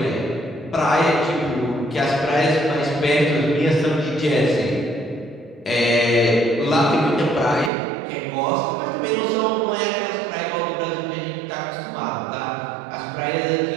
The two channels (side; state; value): left; drops out; at 7.7 s